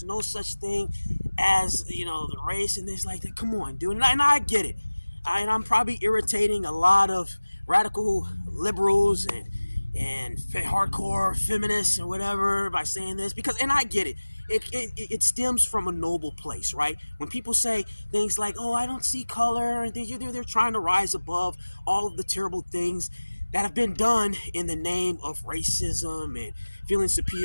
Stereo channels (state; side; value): inverted; both; correlation -1.00